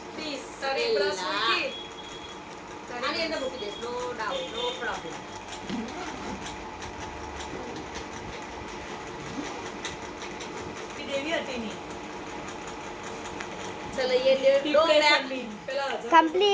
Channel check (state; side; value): identical; both; correlation 1.00